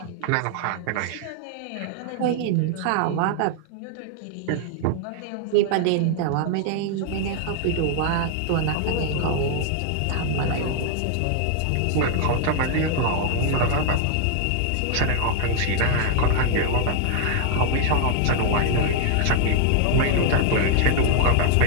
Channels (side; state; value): both; different; correlation 0.00